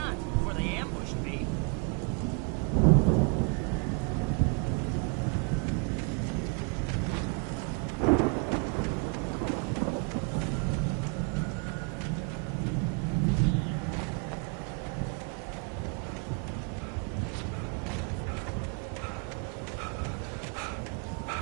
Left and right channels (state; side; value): quieter; left; 36.9 dB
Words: before they ambushed me.